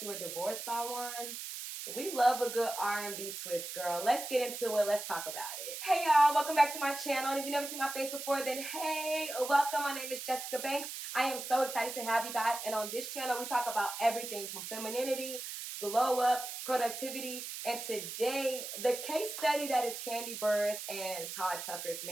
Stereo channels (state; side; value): noise; right; hiss, 7 dB below the sound